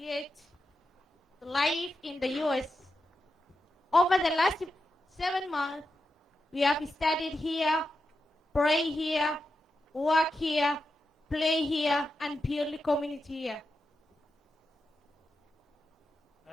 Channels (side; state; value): both; normal; correlation 0.88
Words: life in the U.S. Over the last 7 months, We have studied here, pray here, work here, play here, and build community here.